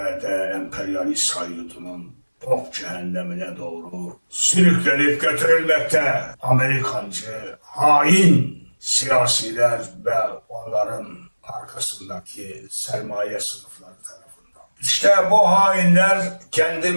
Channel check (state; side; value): inverted; both; correlation -1.00